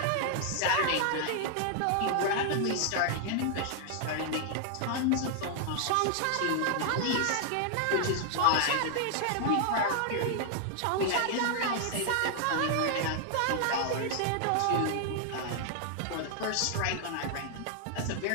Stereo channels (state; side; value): different; both; correlation 0.00